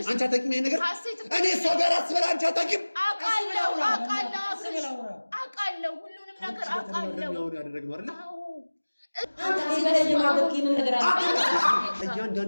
አንቺ አታውቂም ይሄን ነገር። እኔ እሷ ጋር አስበላ አንቺ አታውቂም። አውቃለሁ ሁሉንም ነገር አውቃለሁ። ያደረግነው አይደለ?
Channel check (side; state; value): both; inverted; correlation -1.00